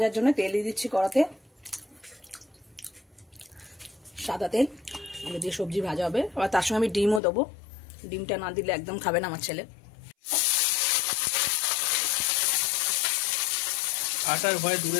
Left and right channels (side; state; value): right; drops out; at 7.2 s